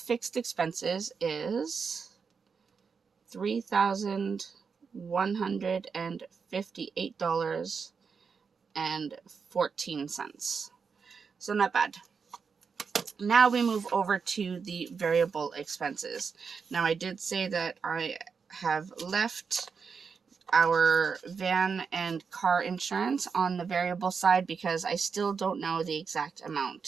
expenses is $3,158.14. So not bad. Now we move over to the variable expenses. Now I did say that I have left our van and car insurance on the variable side because I still don't know the exact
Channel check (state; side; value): quieter; left; 5.7 dB